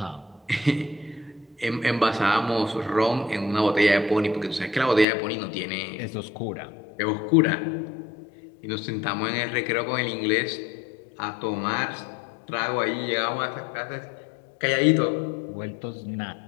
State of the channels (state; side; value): drops out; right; at 5.1 s